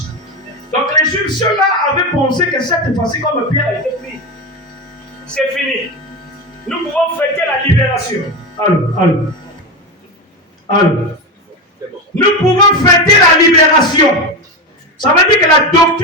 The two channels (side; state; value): both; normal; correlation 0.17